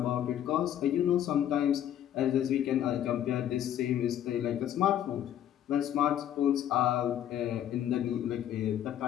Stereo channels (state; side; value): quieter; right; 10.8 dB